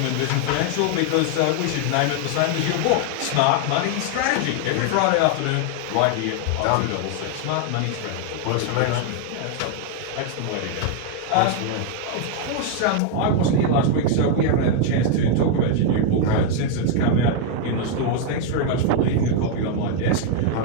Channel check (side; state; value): both; different; correlation 0.00